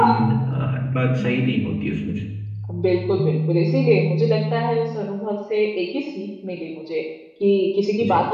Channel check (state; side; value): identical; both; correlation 1.00